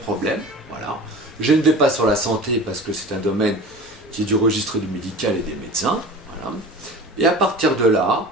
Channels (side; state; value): both; normal; correlation 0.37